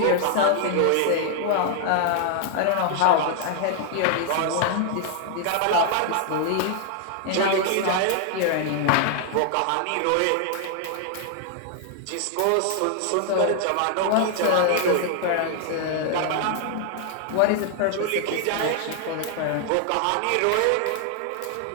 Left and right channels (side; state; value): both; different; correlation 0.00